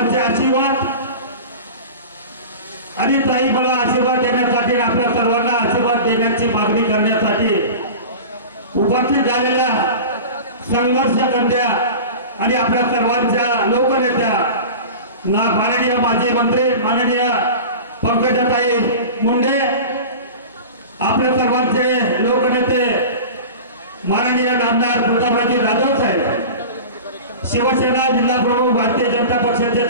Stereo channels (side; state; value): both; inverted; correlation -0.33